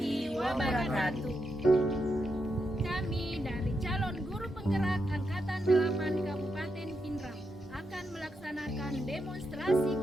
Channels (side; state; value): both; normal; correlation 0.84